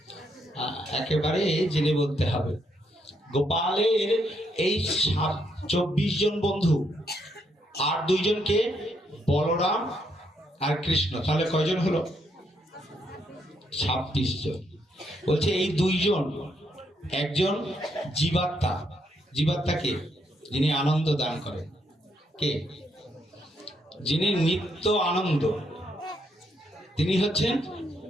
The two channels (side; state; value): both; normal; correlation 0.76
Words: একেবারে জেনে বলতে হবে। গোপালের এই 24 জন বন্ধু আর 2 জনকে বলরাম আর কৃষ্ণ, তাহলে কয়জন হলো? 26 জন। বলছে এই দুইজন, একজন জীবাত্মা। জীবাত্মা কে? যিনি আনন্দ দান করেন। কে? যিনি নিত্য আনন্দ, তিনি হচ্ছেন